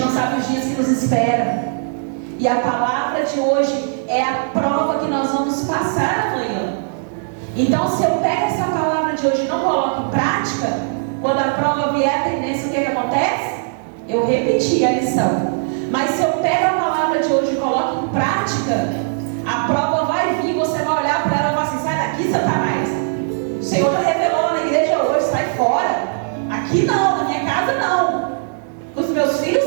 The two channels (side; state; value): left; silent; digital silence